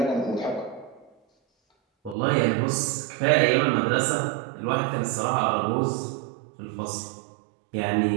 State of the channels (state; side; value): drops out; left; at 2.1 s